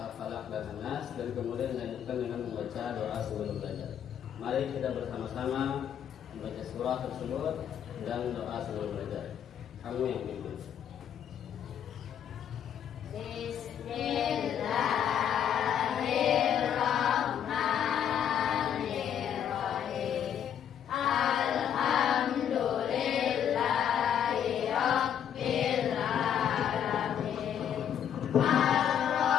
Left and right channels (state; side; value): quieter; right; 9.2 dB